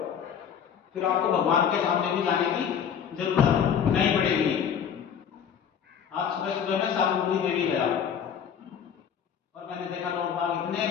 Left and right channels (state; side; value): quieter; right; 7.9 dB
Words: फिर आपको भगवान के सामने भी जाने की जरूरत नहीं पड़ेगी। आज सुबह सुबह मैं सालुमपुरी देवी गया और मैंने देखा लोग बाग इतने